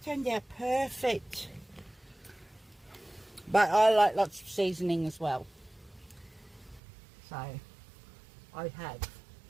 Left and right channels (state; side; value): drops out; left; at 6.8 s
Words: Turned out perfect. But I like lots of seasoning as well. So I have.